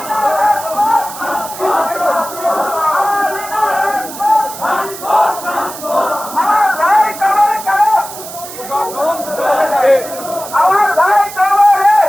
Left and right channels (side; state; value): right; noise; hiss, 12 dB below the sound